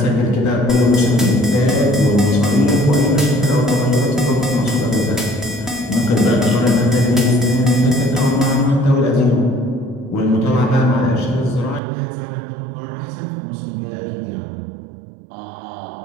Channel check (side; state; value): left; drops out; at 11.8 s